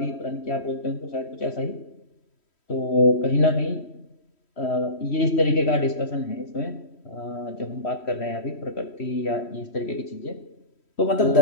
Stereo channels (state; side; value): late; right; 3.1 ms